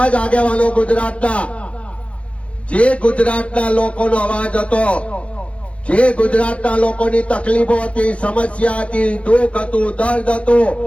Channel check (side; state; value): right; late; 0.062 ms